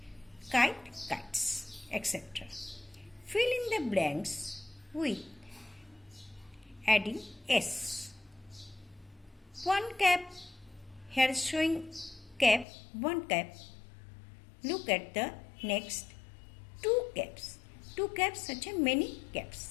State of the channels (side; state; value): right; drops out; at 12.7 s